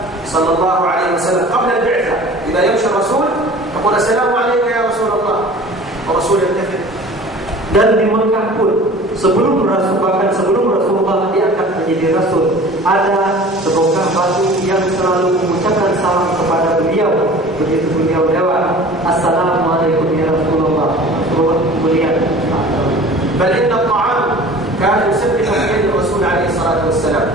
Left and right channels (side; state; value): both; normal; correlation 0.43